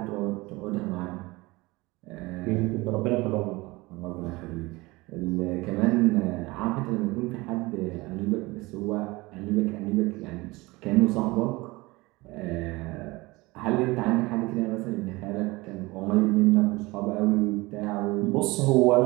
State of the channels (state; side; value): quieter; left; 22.3 dB